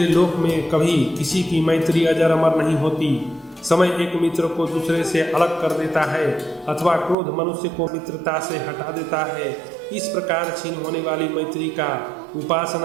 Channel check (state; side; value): drops out; left; at 7.2 s